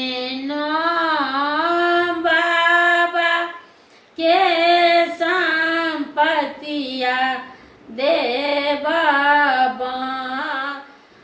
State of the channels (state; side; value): identical; both; correlation 1.00